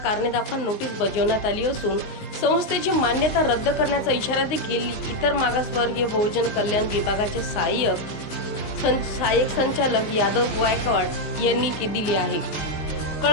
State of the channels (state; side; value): late; right; 19 ms